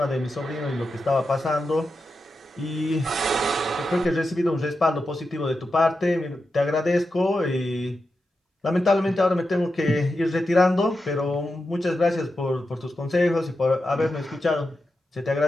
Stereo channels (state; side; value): normal; both; correlation 0.89